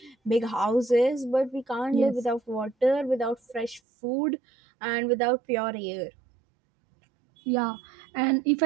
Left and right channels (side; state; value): left; drops out; at 3.8 s